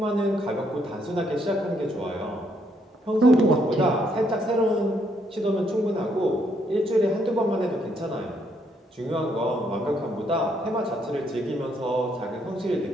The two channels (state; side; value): normal; both; correlation 0.72